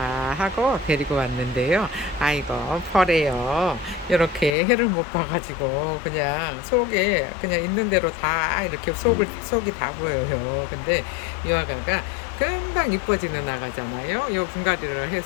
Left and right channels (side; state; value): right; drops out; at 4.5 s